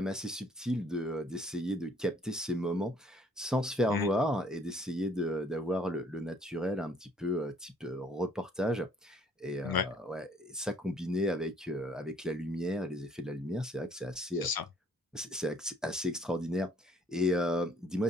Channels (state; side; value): normal; both; correlation 0.61